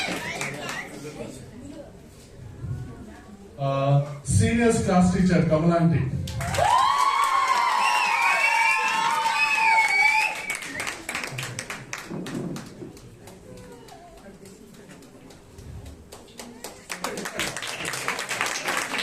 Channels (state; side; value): identical; both; correlation 1.00